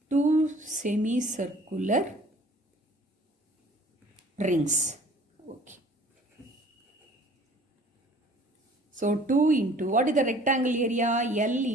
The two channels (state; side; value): normal; both; correlation 0.51